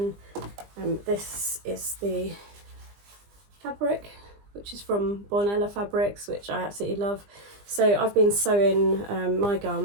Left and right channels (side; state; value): left; late; 20 ms